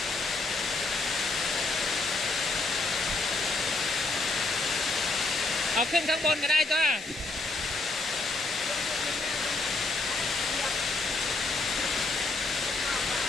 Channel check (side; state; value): right; quieter; 3.3 dB